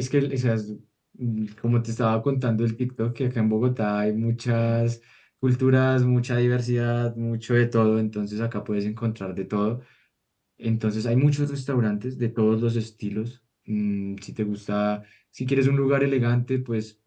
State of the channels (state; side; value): identical; both; correlation 1.00